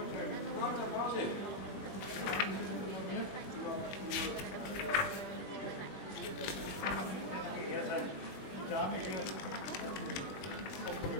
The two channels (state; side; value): late; right; 21 ms